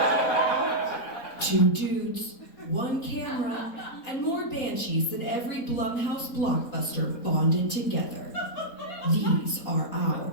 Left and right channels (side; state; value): right; late; 3.9 ms